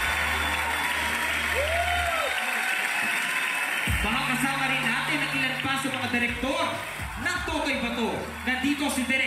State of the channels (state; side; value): identical; both; correlation 1.00